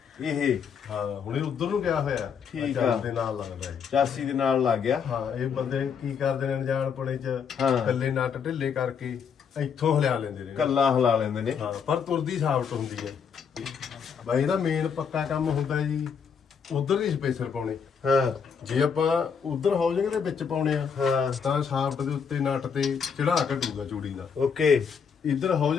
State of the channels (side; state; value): right; quieter; 6.7 dB